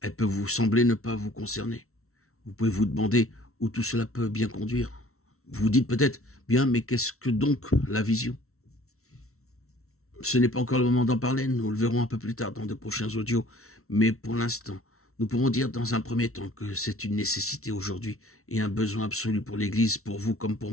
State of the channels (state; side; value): late; right; 0.63 ms